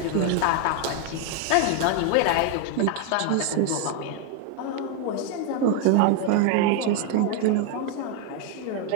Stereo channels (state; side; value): different; both; correlation 0.01